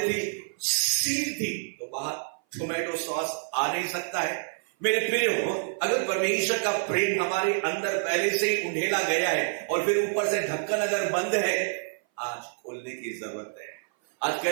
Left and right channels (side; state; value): left; silent; 57 dB below the other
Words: थी, सील थी, तो बाहर टोमेटो सॉस आ नहीं सकता है। मेरे प्रियो, अगर परमेश्वर का प्रेम हमारे अंदर पहले से ही उंडेला गया है और फिर ऊपर से ढक्कन अगर बंद है, आज खोलने की जरूरत है। आज